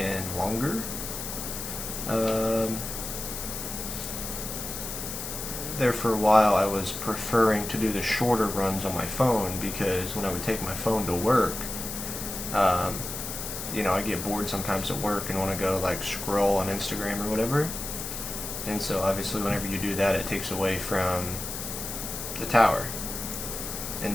longer. There for a while I was preferring to do the shorter runs on my phone, because when I would take my phone to work, you know, I get bored sometimes at work and want to go like scroll on Instagram or whatever. And so obviously whenever you do that, it takes away from the tower.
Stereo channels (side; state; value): left; noise; hiss, 6 dB below the sound